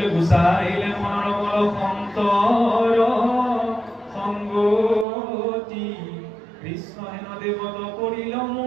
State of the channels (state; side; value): drops out; left; at 5.1 s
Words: গুচাইলে মৰমল সন্তৰ সংগতি কৃষ্ণ হেন দেৱত কৰিল